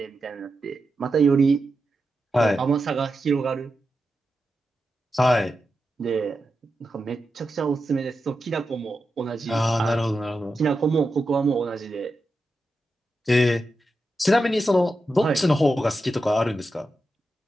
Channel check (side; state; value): both; normal; correlation 0.89